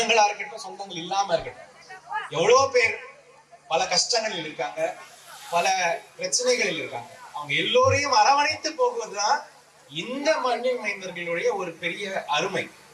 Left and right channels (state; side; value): identical; both; correlation 1.00